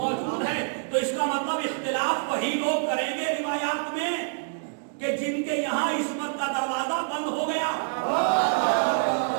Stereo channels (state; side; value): silent; left; digital silence